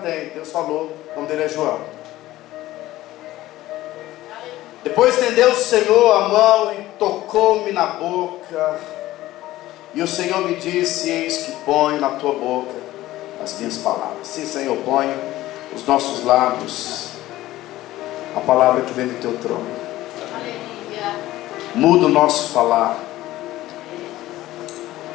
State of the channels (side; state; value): right; quieter; 16.0 dB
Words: Deus falou, o nome dele é João. Depois estendeu o Senhor a mão e tocou-me na boca, e o Senhor me disse: eis que ponho na tua boca as minhas palavras. Sim, Senhor, põe os nossos lábios a palavra que vem do teu trono. Muda o nosso falar.